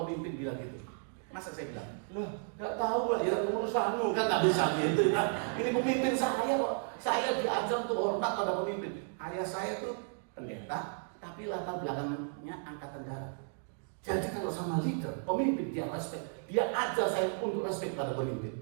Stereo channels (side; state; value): left; silent; 55 dB below the other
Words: pemimpin bilang gitu, Masa saya bilang, loh, nggak tahu lah ya urusanmu kan nggak bisa gitu kan. Ini pemimpin saya kok. Saya diajar untuk hormat pada pemimpin. Ayah saya tuh pendeta, tapi latar belakangnya angkatan darat. Jadi kalau sama leader, pemimpin dia respect, dia ajar saya untuk respect pada